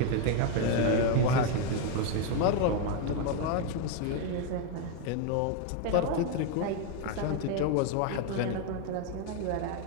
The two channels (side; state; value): both; different; correlation 0.01